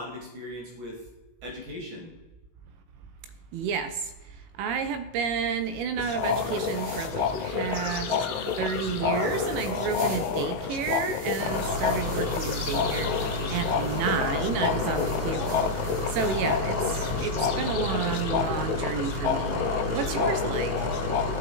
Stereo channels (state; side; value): late; left; 18 ms